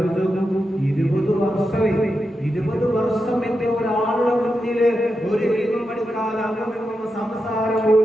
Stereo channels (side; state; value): both; normal; correlation 0.88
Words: 20 വർഷം എന്റെ ഒരാളുടെ മുന്നില് ഒരു ഇൽമു പഠിക്കാൻ അങ്ങും സംസാരം